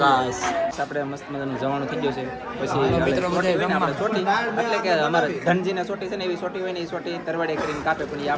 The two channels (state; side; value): identical; both; correlation 1.00